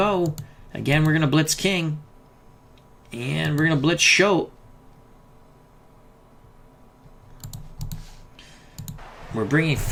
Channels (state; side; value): identical; both; correlation 1.00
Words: Again, we're going to blitz King. And we're going to blitz Schultz. We're bringing